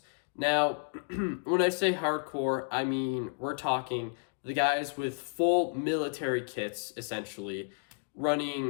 Now, when I say hardcore, I mean we're talking the guys with full military kits, essentially,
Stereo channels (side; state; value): right; silent; digital silence